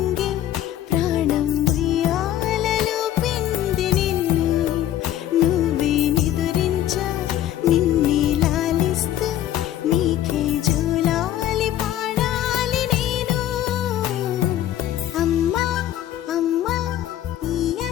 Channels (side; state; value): right; quieter; 12.0 dB